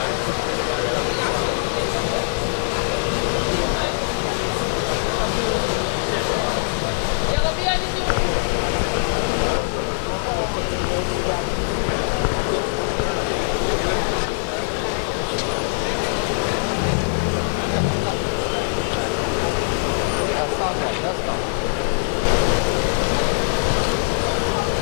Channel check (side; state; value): right; silent; digital silence